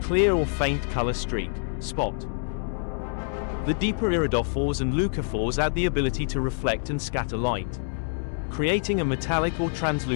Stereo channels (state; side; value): silent; right; digital silence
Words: clear or faint color streak, spot. The deeper iridophores and leucophores add the ability to reflect and scatter light, creating a metallic or